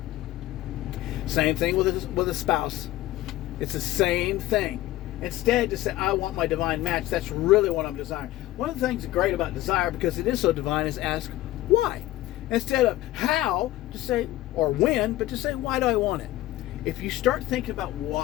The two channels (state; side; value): quieter; right; 15.8 dB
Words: Same thing with a spouse. It's the same thing. Instead, to say, I want my divine match, that's really what I'm desiring. One of the things great about desire, because it is so divine, is ask why. Instead of how, to say, or when, but to say, why do I want it? If you start thinking about